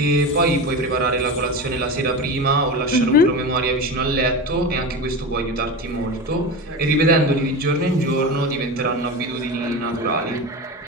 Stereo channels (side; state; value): both; normal; correlation 0.25